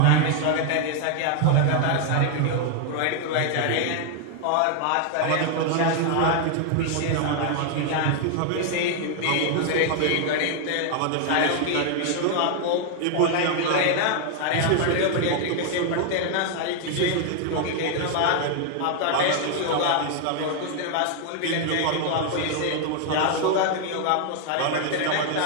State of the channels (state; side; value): different; both; correlation 0.00